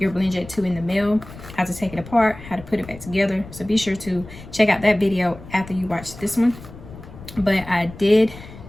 Blendjet 2 in the mail, how to take it apart, how to put it back together. So be sure to check out that video after you watch this one. But I did,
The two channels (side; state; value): left; noise; rumble, 16 dB below the sound